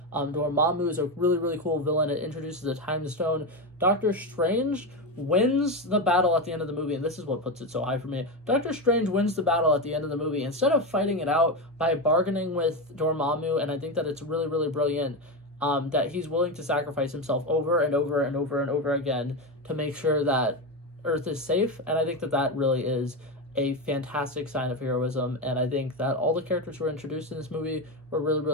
Dormammu is a really, really cool villain. It introduces the Time Stone. Doctor Strange wins the battle at the end of the movie, and this is what puts it so high for me. Doctor Strange wins the battle at the end of the movie instead of fighting it out by bargaining with Dormammu, and I think that it's really, really brilliant that he's willing to sacrifice himself over and over again to make sure that Earth is safe, and I think that that really is a fantastic sign of heroism, and I think that all the characters who were introduced in this movie were really,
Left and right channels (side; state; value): both; normal; correlation 0.14